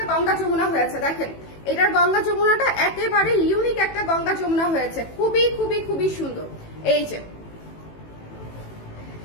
গঙ্গা যমুনা হয়েছে। দেখেন এটার গঙ্গা যমুনাটা একেবারে ইউনিক একটা গঙ্গা যমুনা হয়েছে, খুবই খুবই খুবই সুন্দর। এই যে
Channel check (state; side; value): late; right; 18 ms